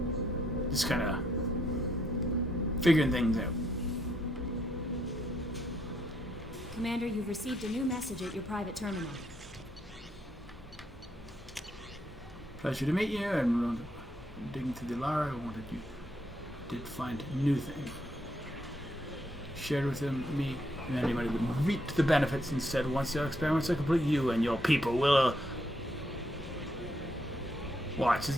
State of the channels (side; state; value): both; normal; correlation 0.75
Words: just kind of figuring things out. Commander, you've received a new message at your private terminal. Pleasure to meet you, and digging through the Lara, I wanted you did find a new thing. Shared with me and anybody would reap the benefits instead. Once your experiments are complete, you and your people will watch as